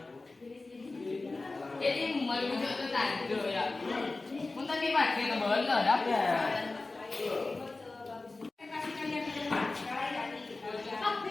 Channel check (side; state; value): right; quieter; 3.4 dB